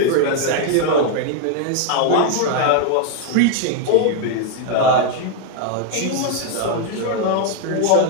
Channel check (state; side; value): different; both; correlation 0.00